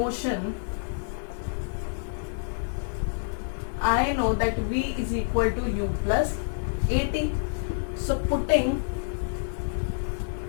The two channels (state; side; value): silent; right; digital silence